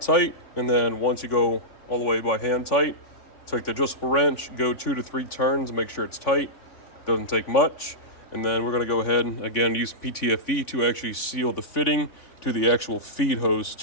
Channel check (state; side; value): late; right; 3.5 ms